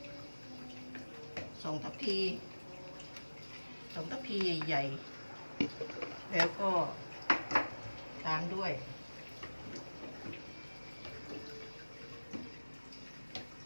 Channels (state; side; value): inverted; both; correlation -1.00